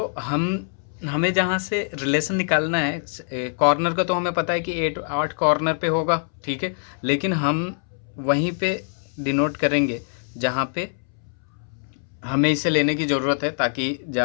हमें जहाँ से रिलेशन निकालना है कॉर्नर का, तो हमें पता है कि 8 कॉर्नर पे होगा, ठीक है, लेकिन हम वहीं पे डिनोट करेंगे जहाँ पे हमें इसे लेने की ज़रूरत है, ताकि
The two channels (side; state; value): right; silent; 63 dB below the other